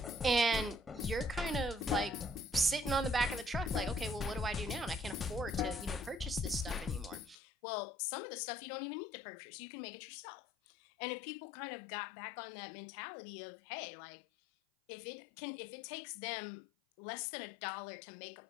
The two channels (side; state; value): right; drops out; at 7.4 s